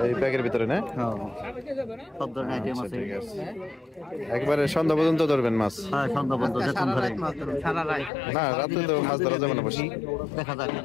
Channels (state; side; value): drops out; right; at 8.1 s